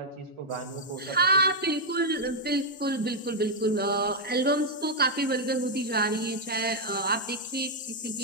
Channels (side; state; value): both; normal; correlation -0.02